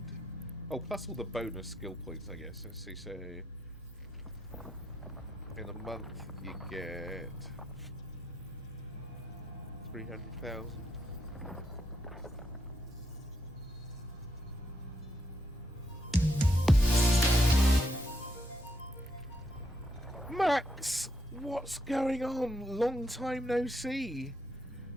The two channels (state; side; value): normal; both; correlation 0.79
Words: Oh, plus all the bonus skill points, I guess. Let's see, so... In a month, you get... 300,000. Max! What's going on? Long time no see.